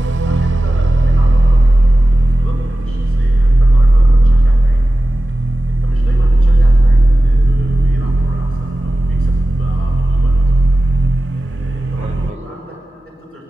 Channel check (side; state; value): both; normal; correlation 0.95